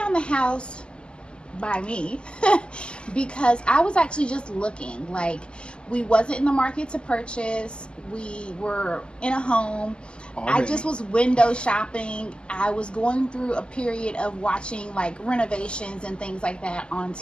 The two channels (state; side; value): late; right; 0.050 ms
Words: the house by me because I was actually just looking. Like, we wasn't in the market to purchase. We were in a home. I just was window shopping. I was going through a period of watching like renovations and things like that on